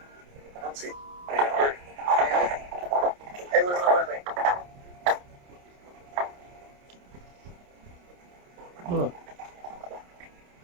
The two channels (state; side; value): late; left; 28 ms